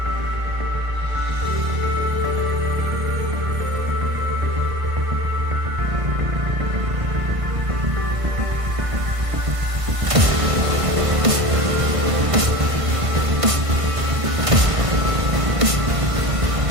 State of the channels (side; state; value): left; late; 1.5 ms